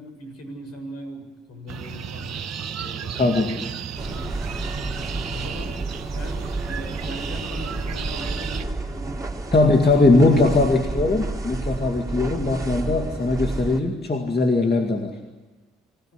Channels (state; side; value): normal; both; correlation 0.66